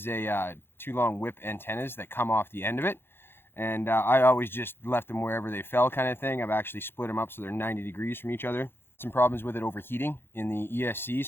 a 2 long whip antennas that come off the end of it. And I always just left them wherever they fell kind of thing. I've actually split them up so they're 90 degrees from each other. Some problems with it overheating in the ESC,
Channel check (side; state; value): right; late; 0.11 ms